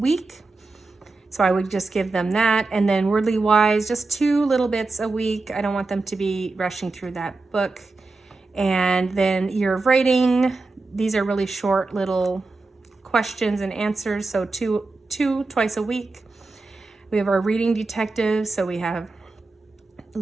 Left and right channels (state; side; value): quieter; left; 3.6 dB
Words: So I would just give them that. And then wordly wise, just 2 little bits a week. I don't want them to be rushing through that book. And then year of writing, these are really short little questions and answers. So two twice a week. We have our reading detective, so we have